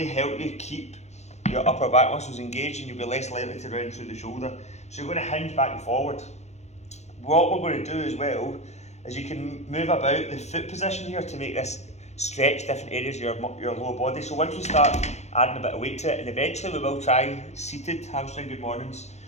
help you keep your upper back muscles engaged, and you'll be less likely to round through the shoulder. So you're going to hinge back and forward. What we're going to do as well is you can move about the foot position here to make this stretch different areas of your lower body. So once we start adding a bit of weight to it, and eventually we will try seated hamstring good mornings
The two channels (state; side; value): late; right; 0.32 ms